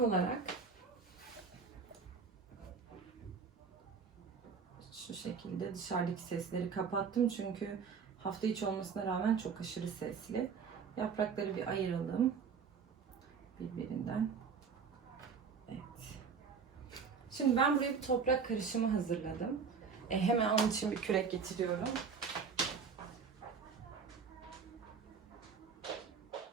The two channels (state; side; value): quieter; left; 5.8 dB